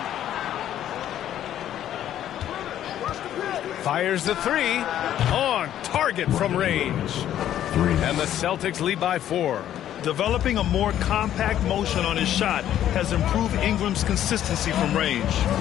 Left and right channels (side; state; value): right; quieter; 11.4 dB